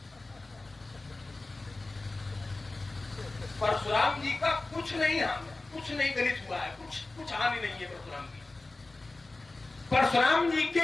परशुराम जी का कुछ नहीं गलित हुआ है, कुछ हानि नहीं है परशुराम जी। परशुराम जी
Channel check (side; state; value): right; quieter; 3.1 dB